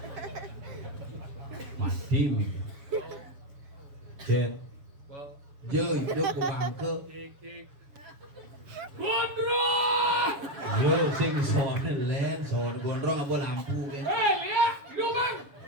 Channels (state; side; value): late; left; 7.1 ms